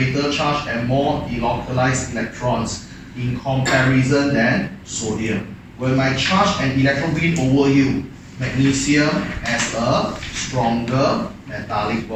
charge and more delocalized electrons in comparison than sodium. When my charge and electron win over you, magnesium has a stronger metallic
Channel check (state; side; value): identical; both; correlation 1.00